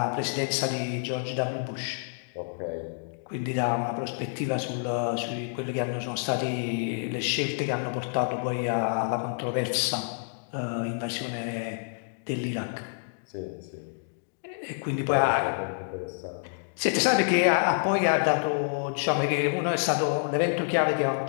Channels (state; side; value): silent; right; digital silence